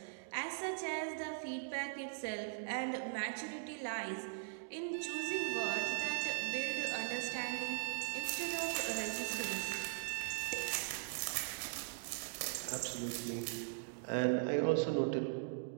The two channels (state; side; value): silent; left; digital silence